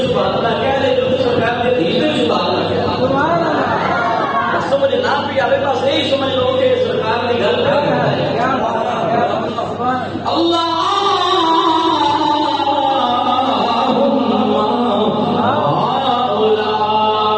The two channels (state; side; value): identical; both; correlation 1.00